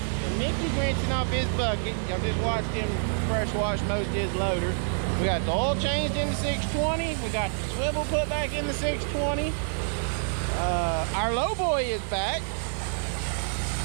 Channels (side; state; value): left; silent; digital silence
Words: Mickey's rinsing off his bucket. Y'all just watched him fresh wash most of his loader. We got the oil changed in the 620. We got the swivel put back in the 620. Our low boy is back.